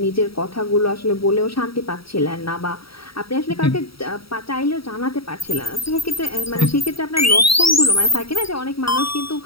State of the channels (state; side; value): late; right; 0.75 ms